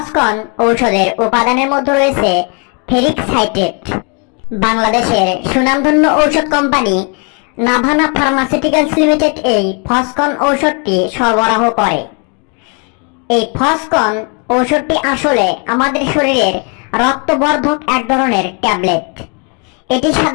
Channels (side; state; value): right; quieter; 35.5 dB